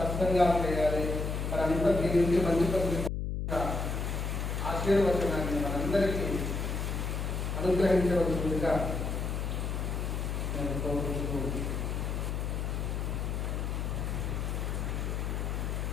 చేయాలి. మరంతా దీని నుంచి మంచి పని ఆశీర్వచనాన్ని మనందరికీ అనుగ్రహించవలసిందిగా నేను కోరుకుంటూ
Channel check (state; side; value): noise; left; hum, 2 dB below the sound